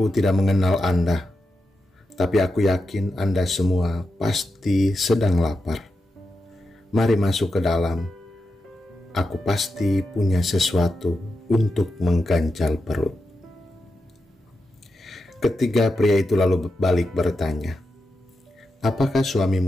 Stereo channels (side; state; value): both; normal; correlation 0.88